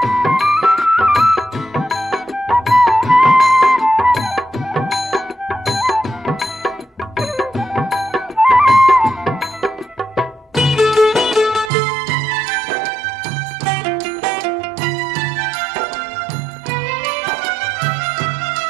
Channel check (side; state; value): left; drops out; at 11.7 s